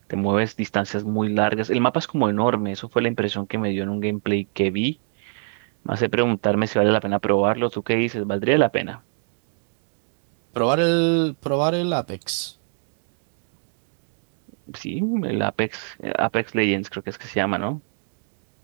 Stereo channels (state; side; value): silent; left; digital silence